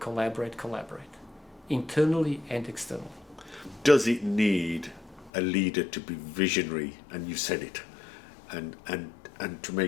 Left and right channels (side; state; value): right; drops out; at 5.3 s